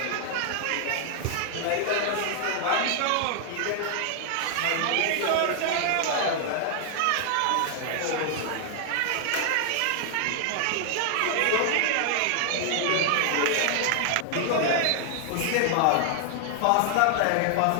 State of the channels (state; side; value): different; both; correlation 0.00